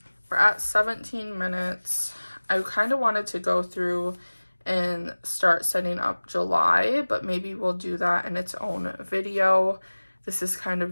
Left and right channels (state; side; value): inverted; both; correlation -1.00